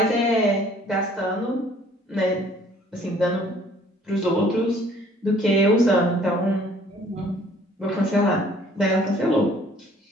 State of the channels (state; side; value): normal; both; correlation 0.57